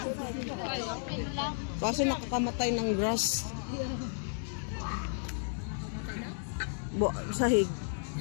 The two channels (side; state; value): right; silent; digital silence